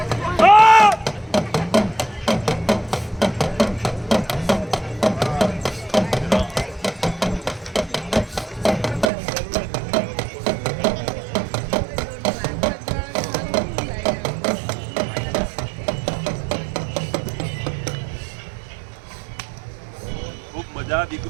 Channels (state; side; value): drops out; left; at 9.1 s